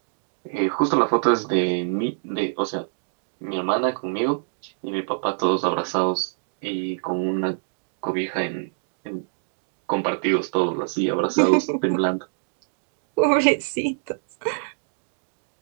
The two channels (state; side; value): silent; left; digital silence